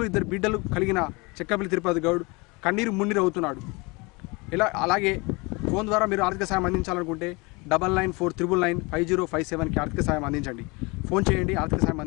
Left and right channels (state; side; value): quieter; right; 26.6 dB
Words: 2 బిడ్డలు కలిగిన చెక్కపల్లి తిరుపతి గౌడ్ కన్నీరు మున్నీరు అవుతున్నాడు. అలాగే ఫోన్ ద్వారా మీరు ఆర్థిక సహాయం అందించాలనుకుంటే 9949995057కి ఆర్థిక సహాయం అందించండి. ఫోన్ చేయండి, ఆర్థిక సహాయం